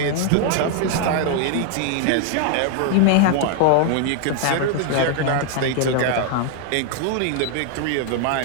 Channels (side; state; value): both; different; correlation 0.00